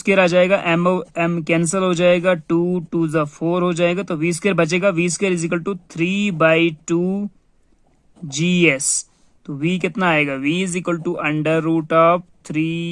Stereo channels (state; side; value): identical; both; correlation 1.00